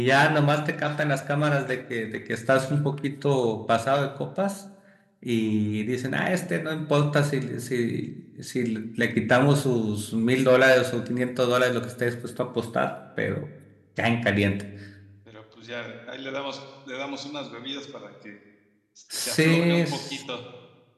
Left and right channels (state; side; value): identical; both; correlation 1.00